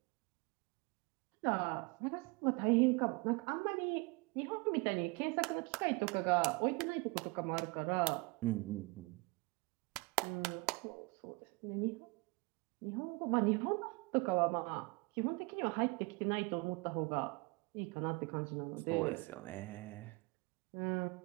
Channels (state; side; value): quieter; left; 26.6 dB